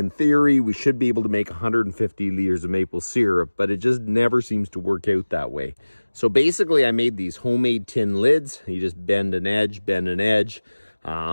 theory, we should be able to make 150 liters of maple syrup, but it just never seems to work out that way. So basically I made these homemade tin lids. You just bend an edge,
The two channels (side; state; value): both; inverted; correlation -1.00